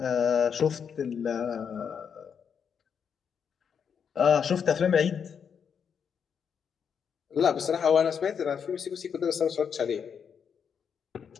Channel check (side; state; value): right; quieter; 7.1 dB